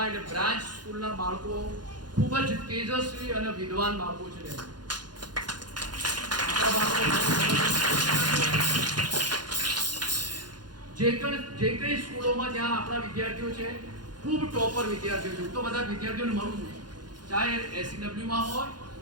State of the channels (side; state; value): left; late; 0.70 ms